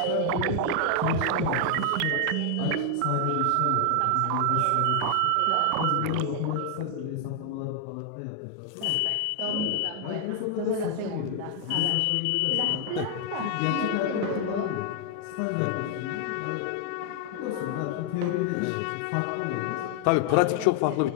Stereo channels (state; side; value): different; both; correlation 0.00